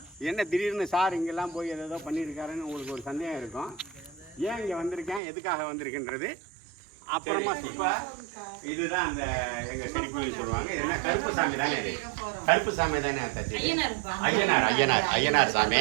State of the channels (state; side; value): drops out; left; at 5.2 s